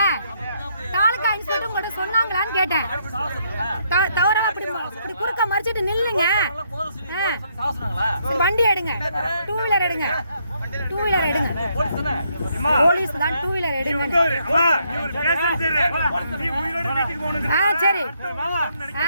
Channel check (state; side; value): inverted; both; correlation -0.73